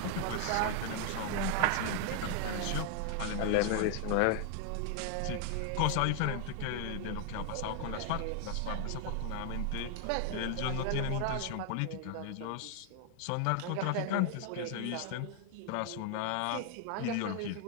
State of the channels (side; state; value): both; different; correlation 0.00